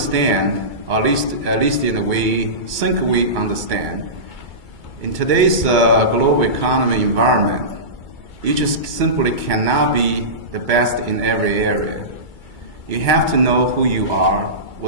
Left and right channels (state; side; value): late; left; 2.3 ms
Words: at least we think we understand, in today's global economy environment, you just simply cannot be the best in every area. You have to know who you are,